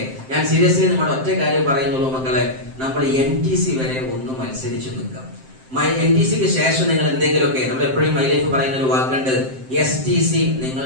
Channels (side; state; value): left; late; 7.7 ms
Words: ഞാൻ സീരിയസ്ലി നമ്മുടെ ഒറ്റ കാര്യം പറയുന്നുള്ളൂ മക്കളെ, നമ്മൾ NTC വരെ ഒന്ന് മത്സരിച്ചു നിൽക്കാം. NTC-ക്ക് ശേഷം നിങ്ങൾ എന്തെങ്കിലുമൊക്കെ, നമ്മൾ എപ്പോഴും മൈ ലൈഫ് പറയുന്ന ഒരു വാക്കുണ്ട്, STC